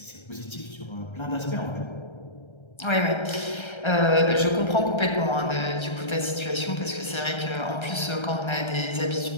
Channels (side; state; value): right; late; 1.3 ms